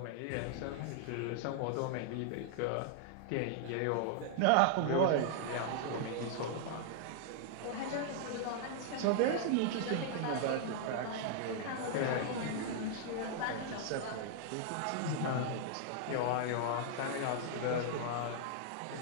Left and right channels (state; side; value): different; both; correlation -0.01